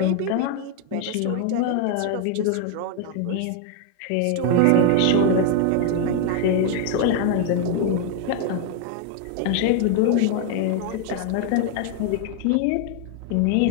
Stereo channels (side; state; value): both; different; correlation 0.00